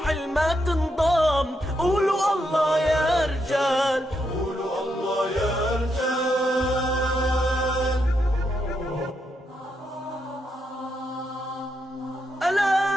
الما تنضام قولوا الله يا رجال قولوا الله يا رجال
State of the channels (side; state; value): both; normal; correlation 0.81